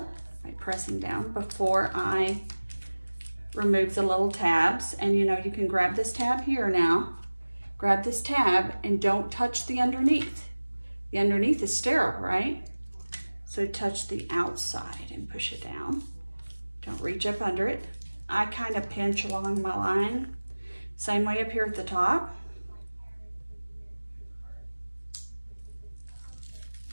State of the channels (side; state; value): both; inverted; correlation -1.00